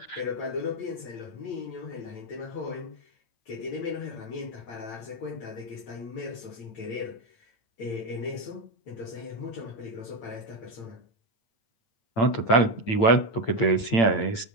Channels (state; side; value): late; right; 8.8 ms